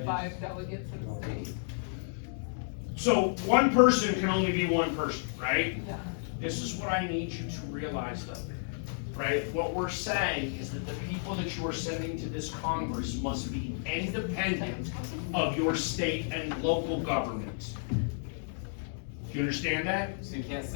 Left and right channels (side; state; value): right; silent; digital silence